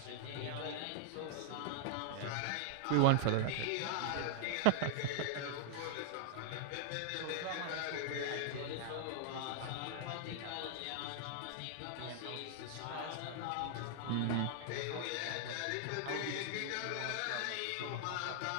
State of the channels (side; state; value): both; different; correlation -0.01